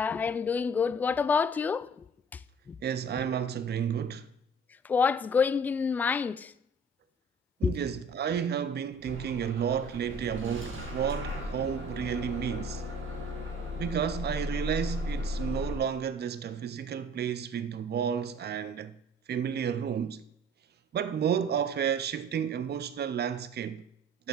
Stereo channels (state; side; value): normal; both; correlation 0.48